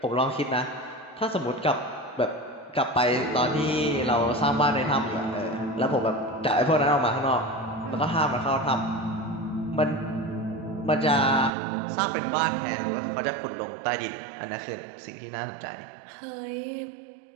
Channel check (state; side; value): drops out; left; at 11.5 s